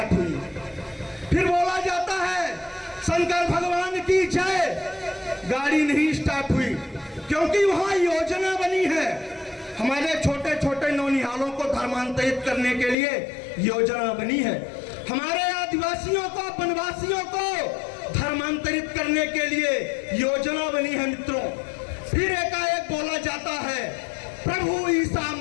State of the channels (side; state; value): right; drops out; at 13.0 s